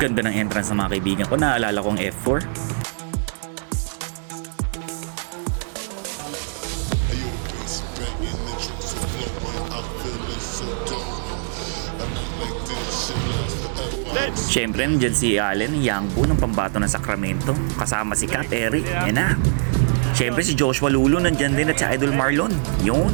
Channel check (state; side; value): silent; left; digital silence